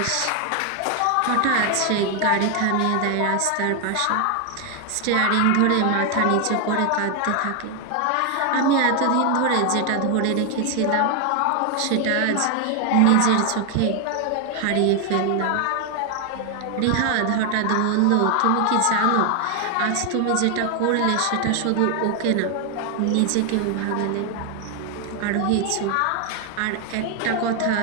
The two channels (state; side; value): different; both; correlation 0.00